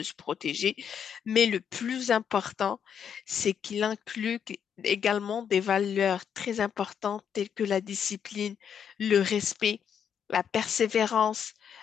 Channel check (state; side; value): quieter; right; 8.0 dB